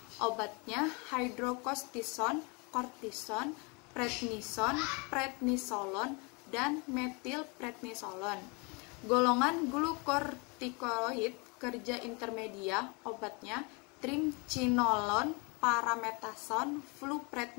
Obatnya hidrokortison, kortison, prednisolon, dan metilprednisolon. Golongan glukokortikoid kerja intermedia, obatnya triamcinolone, parametasone,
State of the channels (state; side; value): quieter; right; 30.6 dB